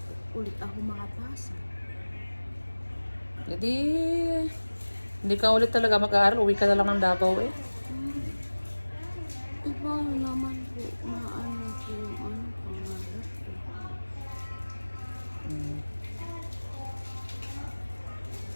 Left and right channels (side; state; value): both; inverted; correlation -1.00